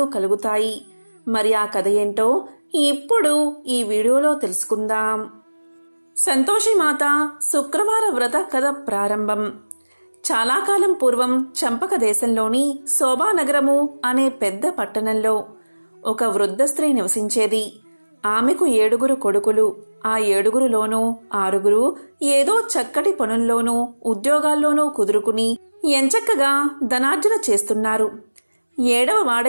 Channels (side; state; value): both; inverted; correlation -1.00